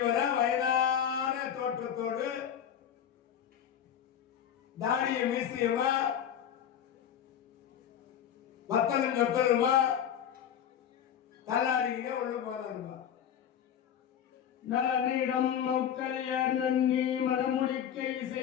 வயதான தோற்றத்தோடு தாடிய மீசியமா வத்தலும் சொத்தலுமா தள்ளாடிக்கிட்டே உள்ள போறாருமா. நலனிடம் மௌக்கல்யர் நன்னி மனமுடிக்கை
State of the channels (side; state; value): right; quieter; 9.2 dB